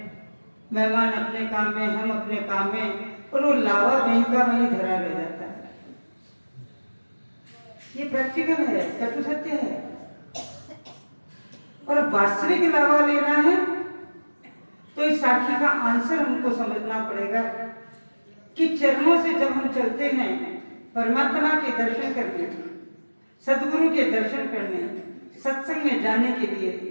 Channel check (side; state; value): both; inverted; correlation -1.00